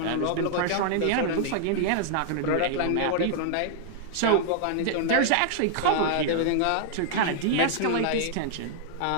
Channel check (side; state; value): both; different; correlation -0.01